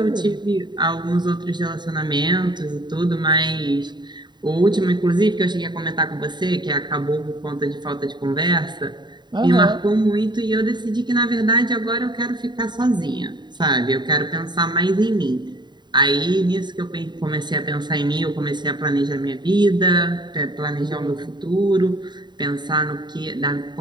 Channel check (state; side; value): late; left; 0.21 ms